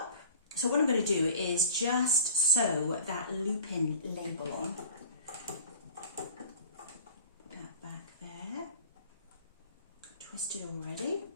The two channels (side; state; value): both; inverted; correlation -0.43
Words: So what I'm going to do is just sew that loop-in label on. Put that back there. Twisted already.